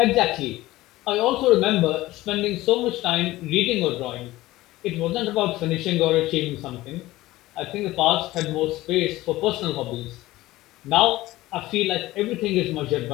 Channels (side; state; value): right; quieter; 17.4 dB